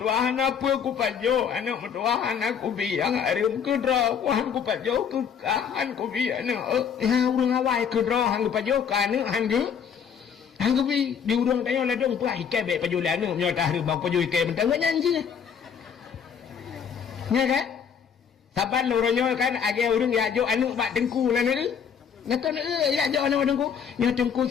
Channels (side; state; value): right; quieter; 7.2 dB